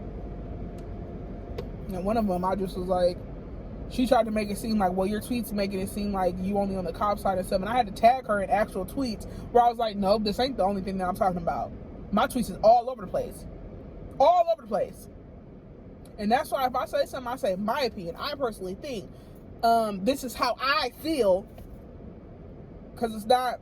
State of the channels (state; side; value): identical; both; correlation 1.00